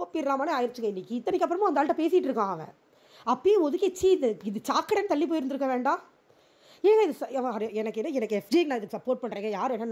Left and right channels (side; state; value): both; identical; correlation 1.00